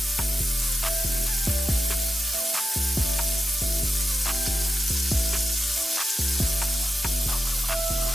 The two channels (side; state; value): both; normal; correlation 0.90